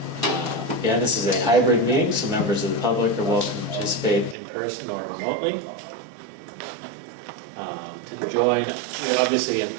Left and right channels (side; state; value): left; drops out; at 4.4 s